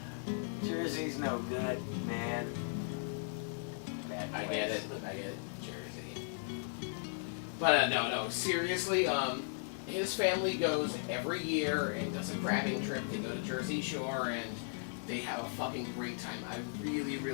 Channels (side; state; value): right; silent; digital silence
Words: Jersey's no good, man. I get it, Jersey. But no, seriously, his family goes every year and does a crabbing trip. They go to Jersey Shore and they have a fucking great time. I really,